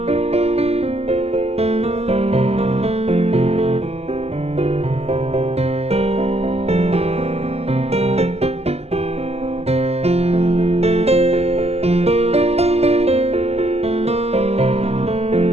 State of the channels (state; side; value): late; left; 0.30 ms